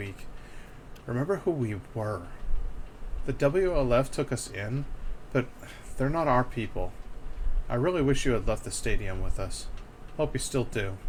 Remember who we were. The WLF took us in, but they're not our people. I really wish you had left the stadium with us. Hope you still do.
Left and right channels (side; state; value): both; identical; correlation 1.00